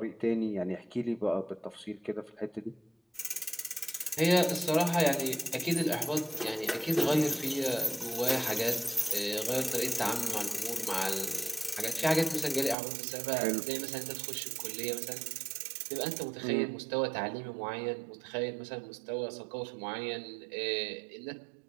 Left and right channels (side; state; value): left; drops out; at 12.8 s